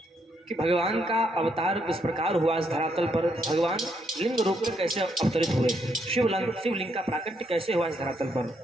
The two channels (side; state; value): both; normal; correlation 0.75